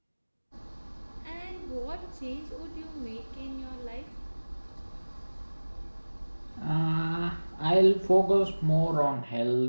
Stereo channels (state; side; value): inverted; both; correlation -1.00